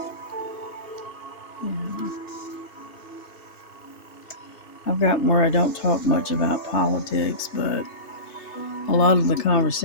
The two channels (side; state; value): right; late; 3.3 ms